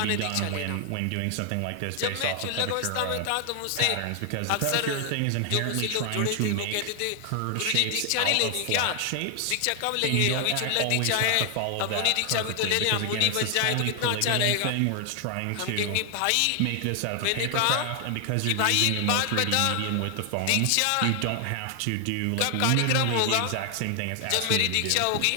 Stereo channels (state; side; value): different; both; correlation 0.00